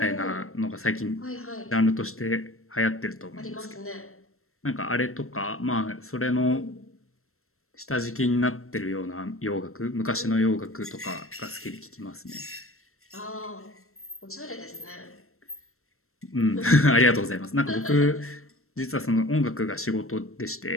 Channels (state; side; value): late; right; 0.62 ms